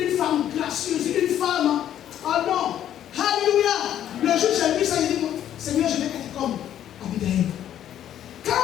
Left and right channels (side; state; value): right; quieter; 10.9 dB